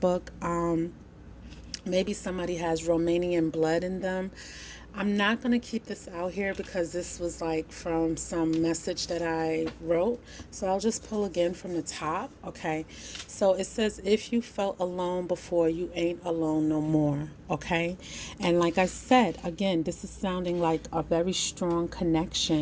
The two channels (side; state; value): both; identical; correlation 1.00